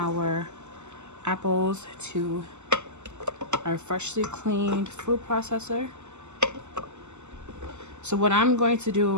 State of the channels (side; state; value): left; late; 0.83 ms